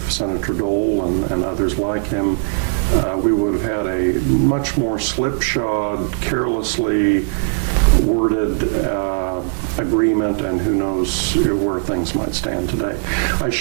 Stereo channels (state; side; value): silent; left; digital silence